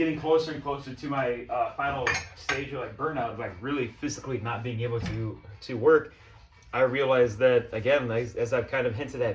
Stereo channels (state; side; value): identical; both; correlation 1.00